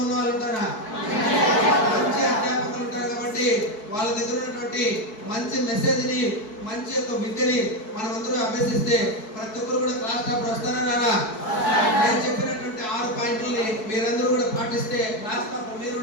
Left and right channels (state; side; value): late; right; 4.6 ms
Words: ఉన్న వాళ్ళు ఉంటారా? మంచి అధ్యాపకులు ఉంటారు. కాబట్టి వాళ్ళ దగ్గర ఉన్నటువంటి మంచి మెసేజ్ ని, మంచి యొక్క విద్యని మనమందరూ అభ్యసిస్తే ప్రతి ఒక్కరు కూడా క్లాస్ టాపర్ వస్తారా రారా? నేను చెప్పినటువంటి 6 పాయింట్లని మీరందరూ కూడా పాటిస్తే క్లాస్ టాపర్ మీరు